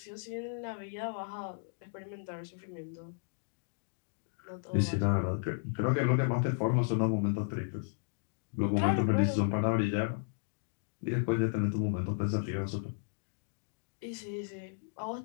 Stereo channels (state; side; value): silent; right; digital silence